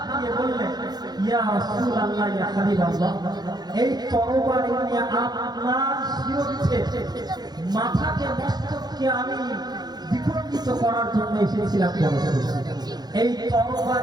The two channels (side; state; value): left; late; 0.19 ms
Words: দিয়ে বললেন, ইয়া রাসূলুল্লাহ, ইয়া হাবিবাল্লাহ, এই তরবারি নিয়ে আপনার শিরোচ্ছে মাথাকে মস্তককে আমি বিখণ্ডিত করার জন্য এসেছিলাম। এই